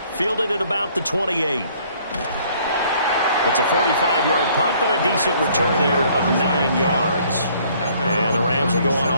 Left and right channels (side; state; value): both; inverted; correlation -0.60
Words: Fielded at about the 28. It's a 45-yard punt, but a decent return there of 9 yards. And the Rams will go on